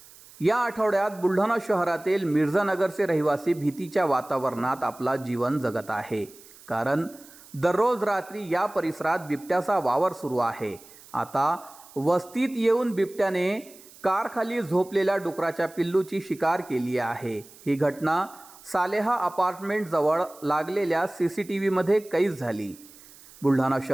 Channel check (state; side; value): noise; right; hiss, 22 dB below the sound